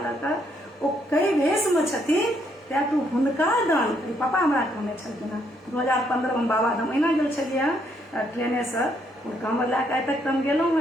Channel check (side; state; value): both; normal; correlation 0.72